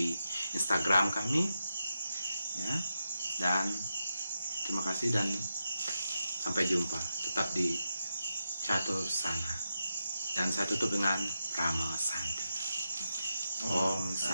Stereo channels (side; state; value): both; inverted; correlation -0.87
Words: Instagram kami. Ya. Dan terima kasih dan sampai jumpa. Tetap di Catur Sana. Dan saya tutup dengan Rama Santi. Om